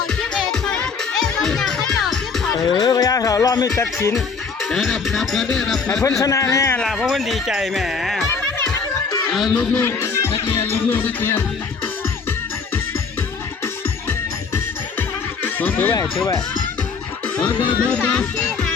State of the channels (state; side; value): quieter; right; 5.2 dB